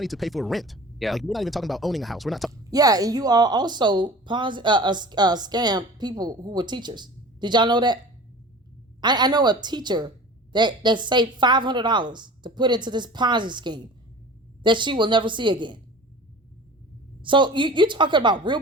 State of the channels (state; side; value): normal; both; correlation 0.39